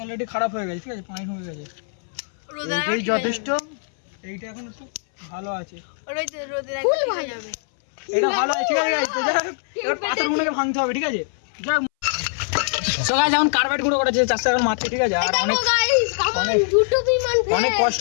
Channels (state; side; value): silent; right; 61 dB below the other